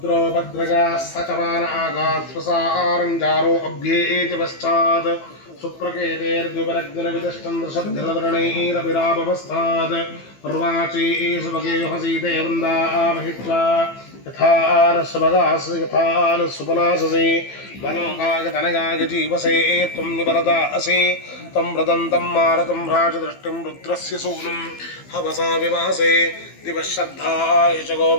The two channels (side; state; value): right; late; 15 ms